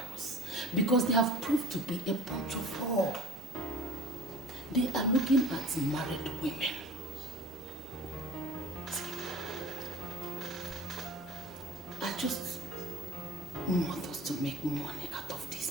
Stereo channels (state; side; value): normal; both; correlation 0.42